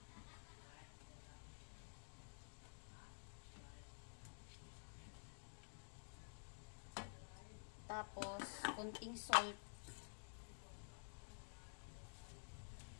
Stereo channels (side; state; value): right; silent; digital silence